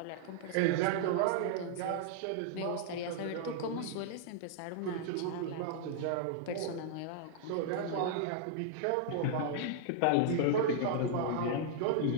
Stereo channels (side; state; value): both; different; correlation -0.01